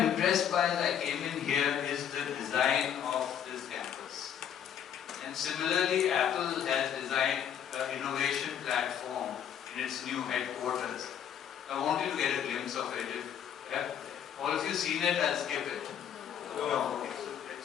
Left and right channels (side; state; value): right; quieter; 9.1 dB